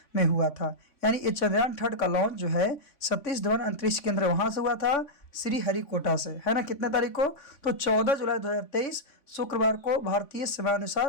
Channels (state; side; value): late; right; 3.5 ms